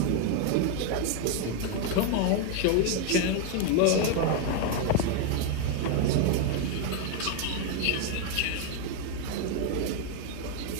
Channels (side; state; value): both; different; correlation 0.01